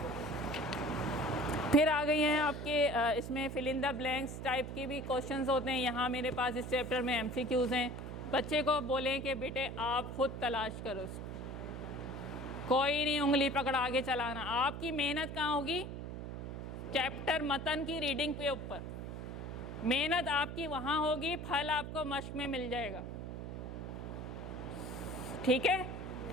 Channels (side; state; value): right; noise; hum, 7 dB below the sound